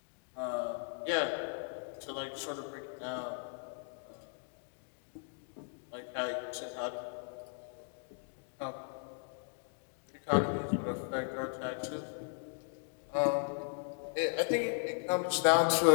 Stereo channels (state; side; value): silent; right; 53 dB below the other